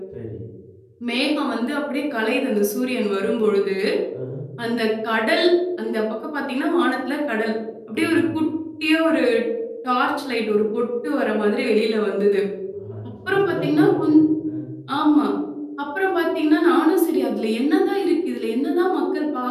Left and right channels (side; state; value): both; identical; correlation 1.00